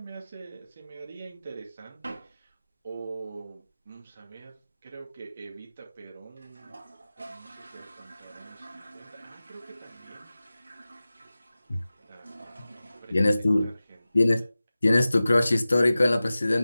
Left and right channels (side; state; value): both; inverted; correlation -0.97